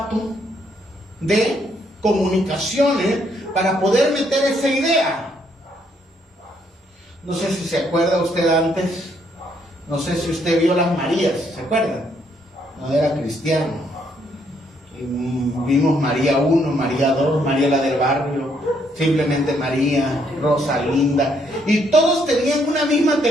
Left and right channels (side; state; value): both; normal; correlation 0.71